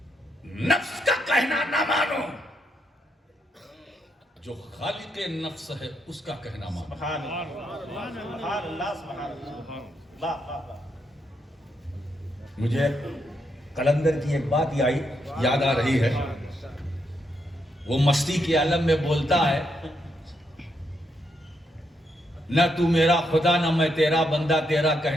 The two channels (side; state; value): both; normal; correlation 0.79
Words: نفس کا کہنا نہ مانو، جو خالق نفس ہے اس کا کہنا مانو۔ سبحان اللہ سبحان اللہ، واہ واہ واہ۔ مجھے قلندر کی ایک بات یاد آ رہی ہے، وہ مستی کے عالم میں بولتا ہے، نہ تو میرا خدا نہ میں تیرا بندہ، تیرا